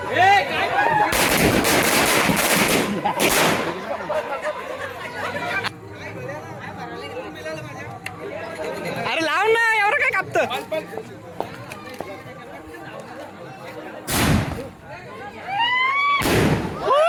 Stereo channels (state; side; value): identical; both; correlation 1.00